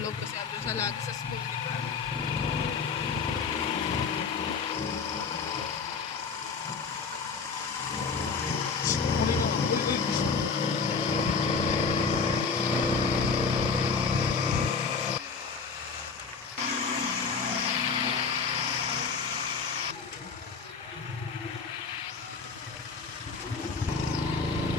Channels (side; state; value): right; quieter; 5.2 dB